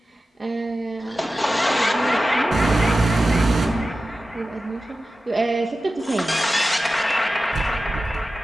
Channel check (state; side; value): normal; both; correlation 0.94